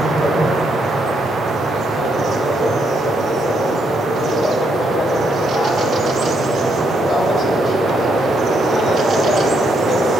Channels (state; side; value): normal; both; correlation 0.75